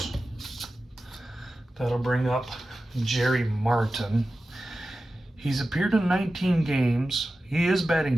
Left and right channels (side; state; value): both; normal; correlation 0.94